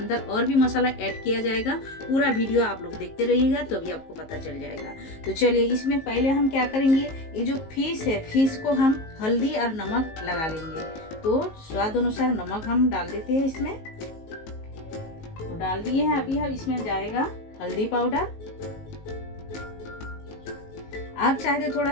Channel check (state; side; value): late; right; 19 ms